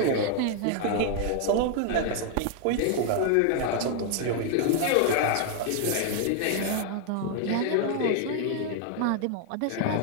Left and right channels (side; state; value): both; different; correlation 0.00